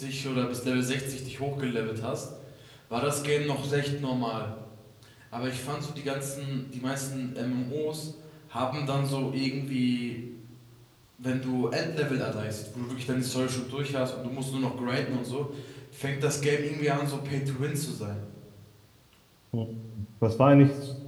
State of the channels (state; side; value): identical; both; correlation 1.00